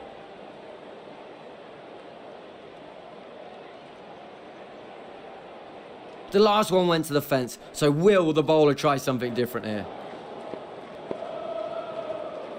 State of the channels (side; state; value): both; identical; correlation 1.00